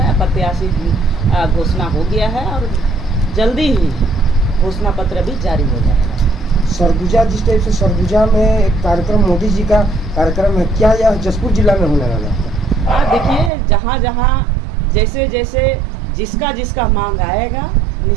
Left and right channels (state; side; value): drops out; left; at 13.5 s